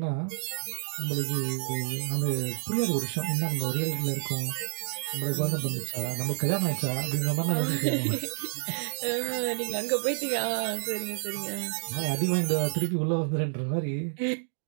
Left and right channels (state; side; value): silent; left; digital silence